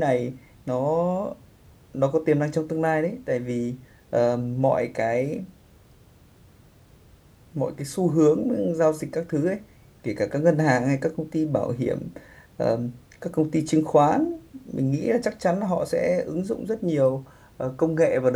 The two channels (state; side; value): identical; both; correlation 1.00